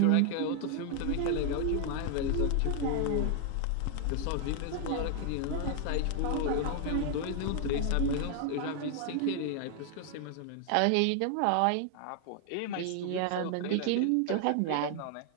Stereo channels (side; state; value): both; different; correlation 0.00